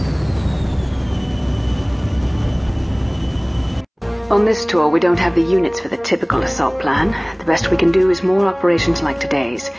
On this tour, we don't have the units for the typical assault plan. The best we can do is more operations like today's.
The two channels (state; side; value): identical; both; correlation 1.00